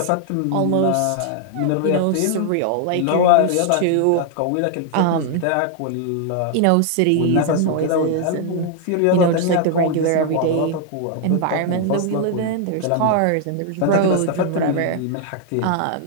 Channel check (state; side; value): different; both; correlation 0.00